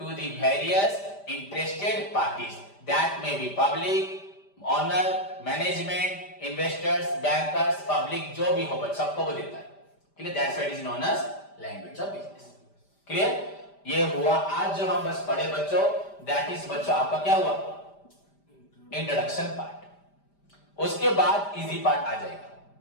the various interested parties that may be public, owner, management, investors, bankers, public, जो भी हो बच्चों सबको वो देता है। Clear? That's why it is known as language of business। Clear? ये हुआ आज जो हम बस पढ़े बच्चों, that is बच्चों आपका क्या हुआ? Introduction part. उसके बाद इजी पार्ट आ जाएगा।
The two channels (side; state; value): right; late; 5.0 ms